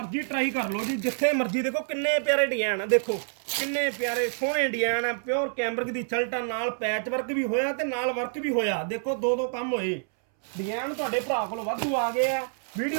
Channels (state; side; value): silent; left; 60 dB below the other